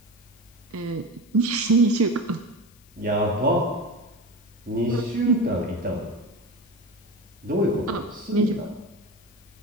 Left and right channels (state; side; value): noise; left; hiss, 28 dB below the sound